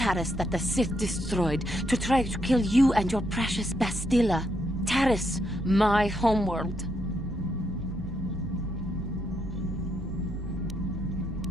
that the Sith destroyed to try to kill you and your precious Bastilla. Taris, my homeworld.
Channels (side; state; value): both; normal; correlation 0.78